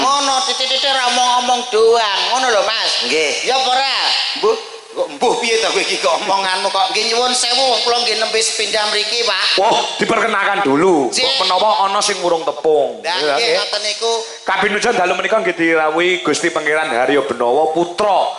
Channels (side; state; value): both; identical; correlation 1.00